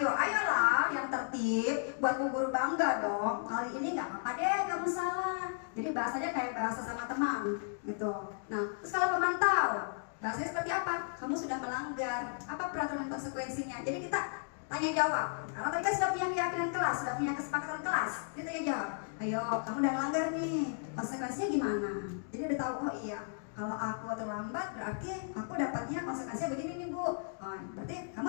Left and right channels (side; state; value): right; silent; digital silence